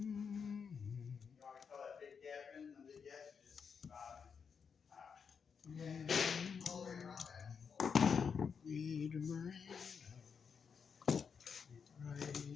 want to call that big gap in? The big gap is just Read Miranda. Read the rights. Read the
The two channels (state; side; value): quieter; right; 6.3 dB